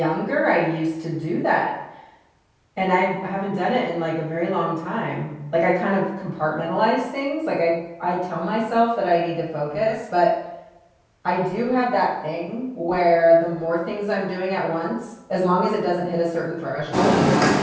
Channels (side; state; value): both; identical; correlation 1.00